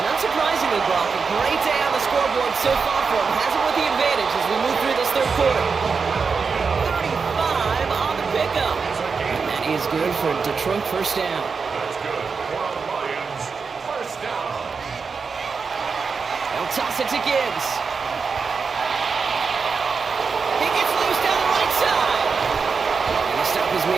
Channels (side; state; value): left; quieter; 5.2 dB